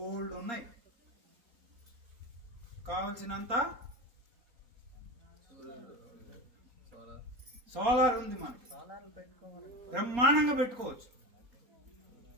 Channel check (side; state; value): left; late; 4.3 ms